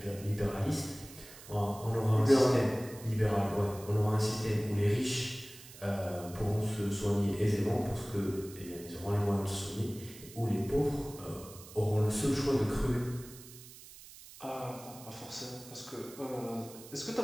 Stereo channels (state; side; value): noise; right; hiss, 18 dB below the sound